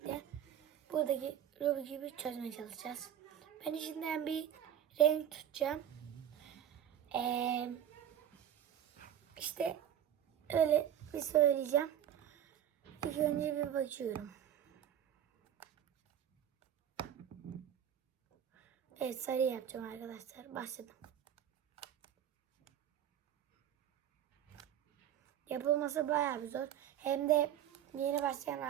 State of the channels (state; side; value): quieter; left; 10.3 dB